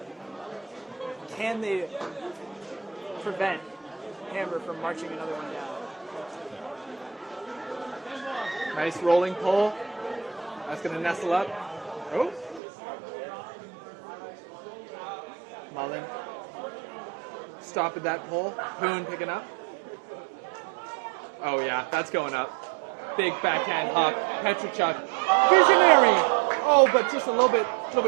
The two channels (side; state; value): left; drops out; at 12.6 s